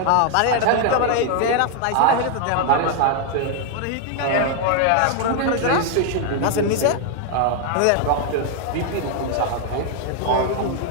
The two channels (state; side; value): different; both; correlation 0.00